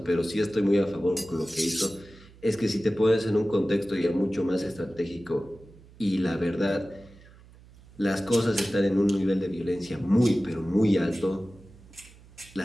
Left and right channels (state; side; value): noise; right; hum, 23 dB below the sound